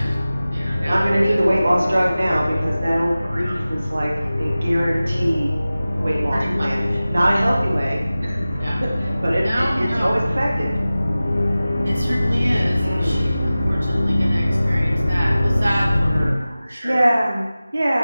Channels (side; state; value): both; inverted; correlation -0.96